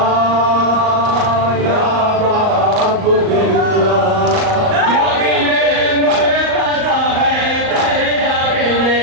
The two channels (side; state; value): left; late; 38 ms